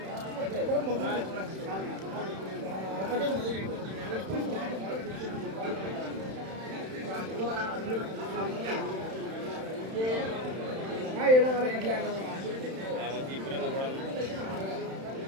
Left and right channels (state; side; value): late; left; 31 ms